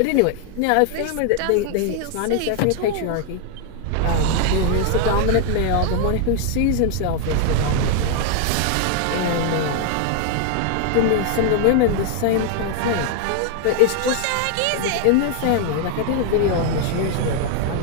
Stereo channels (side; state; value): both; different; correlation 0.00